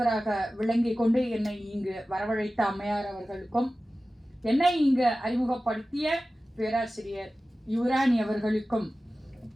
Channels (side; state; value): both; normal; correlation 0.96